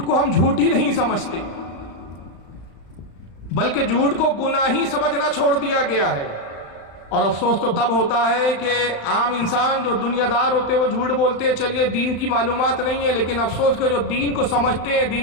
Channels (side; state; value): right; late; 35 ms